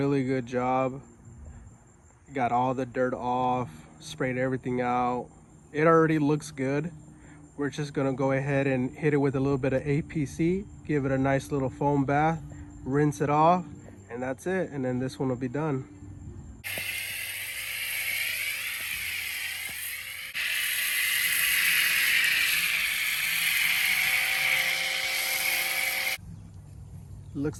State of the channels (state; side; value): identical; both; correlation 1.00